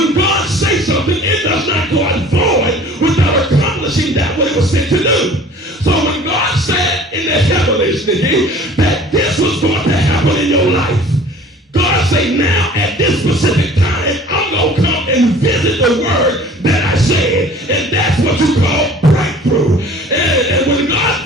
God says something, it does not go out void without accomplishing that what it was sent to do. So when God said in the heavens, Nikki, that this was going to happen in your life, God said, now at this specific time, I'm going to come and visit the word that I said. And that's what you call breakthrough. And when God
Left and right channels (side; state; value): both; normal; correlation 0.47